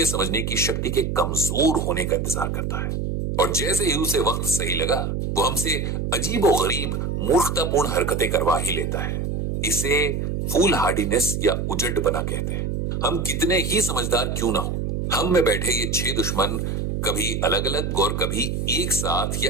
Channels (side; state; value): right; noise; hum, 1 dB below the sound